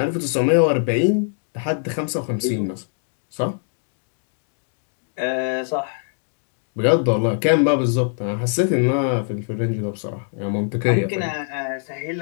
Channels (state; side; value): silent; right; 60 dB below the other